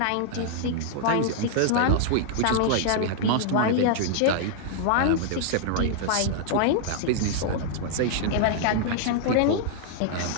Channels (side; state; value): both; different; correlation -0.01